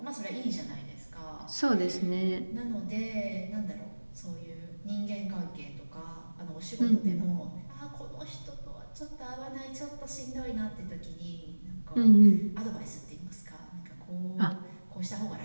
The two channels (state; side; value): inverted; both; correlation -1.00